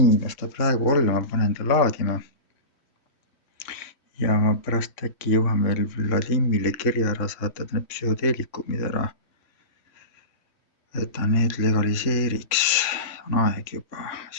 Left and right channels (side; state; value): right; late; 3.5 ms